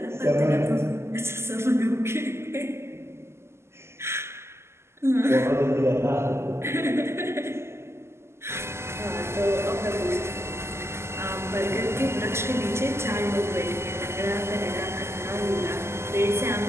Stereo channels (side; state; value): left; late; 0.13 ms